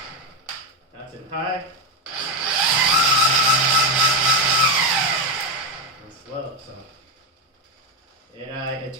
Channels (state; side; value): normal; both; correlation 0.09